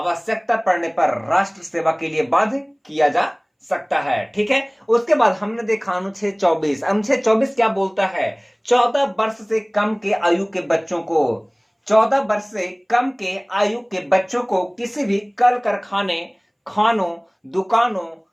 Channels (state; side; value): identical; both; correlation 1.00